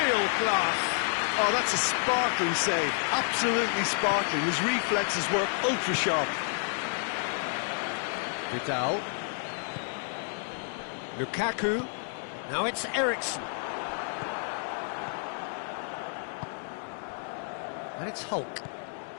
class. Oh, that's a sparkling save, absolutely sparkling. His reflexes were ultra sharp. Vidal. Lukaku. Now it's Eriksson. And it's Hulk.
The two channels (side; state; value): right; silent; 58 dB below the other